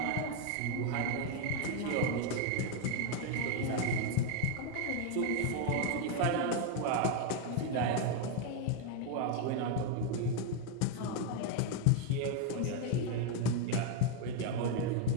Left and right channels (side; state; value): both; different; correlation 0.01